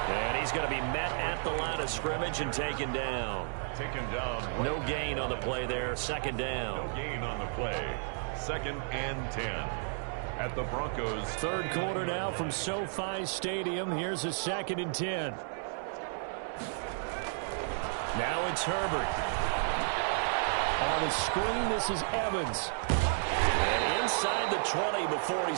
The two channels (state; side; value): silent; left; digital silence